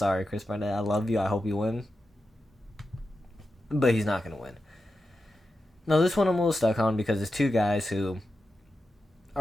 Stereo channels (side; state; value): both; normal; correlation 0.90